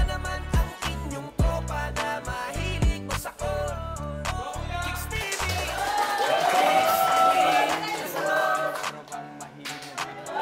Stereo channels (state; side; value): identical; both; correlation 1.00